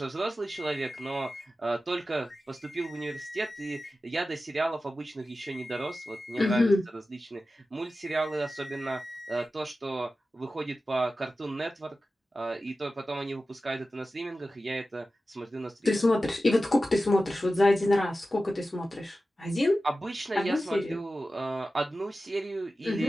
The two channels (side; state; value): both; normal; correlation 0.94